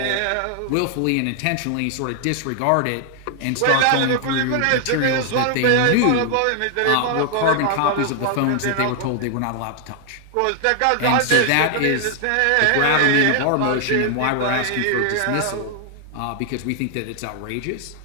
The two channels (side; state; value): both; different; correlation 0.00